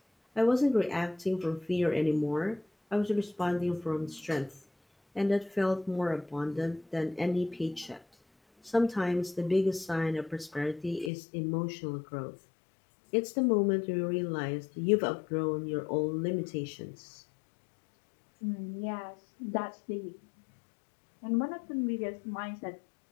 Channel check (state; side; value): drops out; right; at 11.1 s